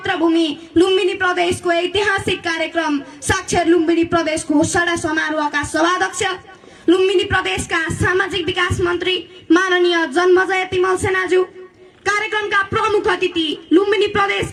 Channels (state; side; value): identical; both; correlation 1.00